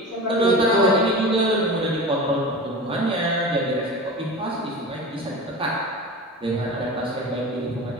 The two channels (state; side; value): normal; both; correlation 0.31